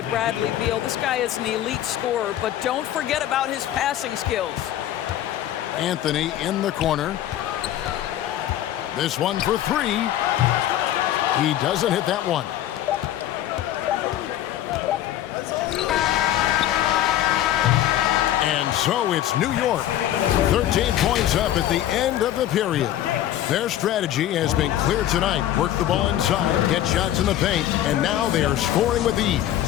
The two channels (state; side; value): quieter; right; 12.4 dB